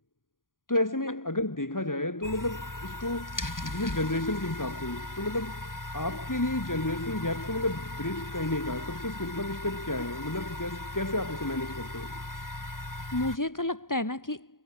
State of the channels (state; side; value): late; right; 0.90 ms